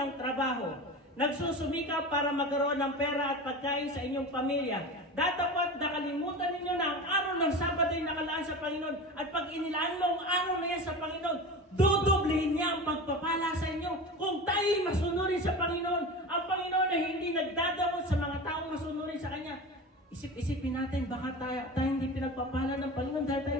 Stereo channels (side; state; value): both; normal; correlation 0.30